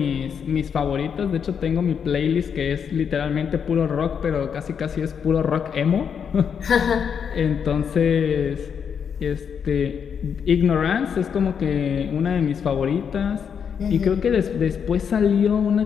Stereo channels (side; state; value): right; quieter; 7.2 dB